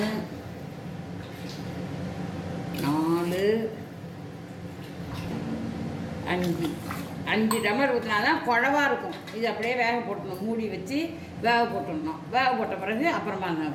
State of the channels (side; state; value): both; identical; correlation 1.00